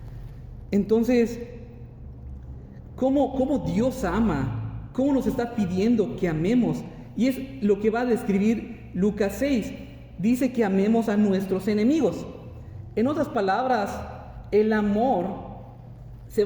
Entonces, ¿cómo Dios ama? ¿Cómo nos está pidiendo que amemos? Y es lo que va a describir Lucas 6. Dice que amemos a nuestros enemigos. En otras palabras, el amor Se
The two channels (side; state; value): both; identical; correlation 1.00